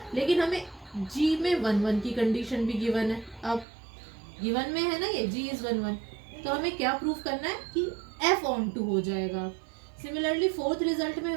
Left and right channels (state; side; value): drops out; left; at 3.7 s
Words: लेकिन हमें g में 1 1 की कंडीशन भी गिवन है. अब गिवन में है ना ये g इज 1 1, तो हमें क्या प्रूफ करना है कि f ऑन टू हो जाएगा. सिमिलरली फोर्थ रिजल्ट में